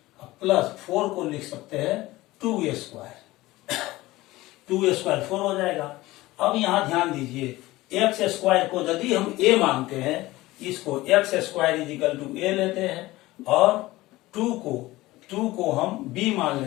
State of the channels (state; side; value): quieter; right; 18.5 dB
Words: प्लस 4 को लिख सकते हैं 2a स्क्वायर। 2a स्क्वायर 4 हो जाएगा। अब यहाँ ध्यान दीजिए x स्क्वायर को यदि हम a मानते हैं इसको x square is equal to a लेते हैं और 2 को हम b मान